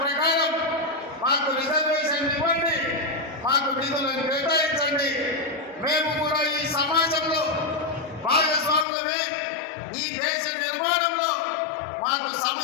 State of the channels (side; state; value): right; drops out; at 8.8 s